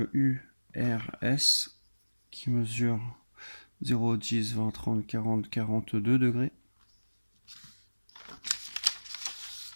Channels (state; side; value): inverted; both; correlation -1.00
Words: URS qui mesure 0, 10, 20, 30, 40, 42 degrés.